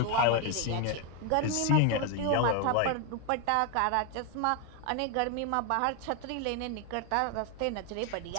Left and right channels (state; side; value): different; both; correlation 0.01